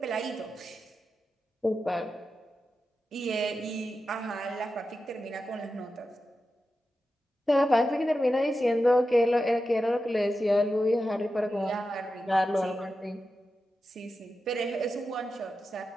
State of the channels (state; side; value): normal; both; correlation 0.91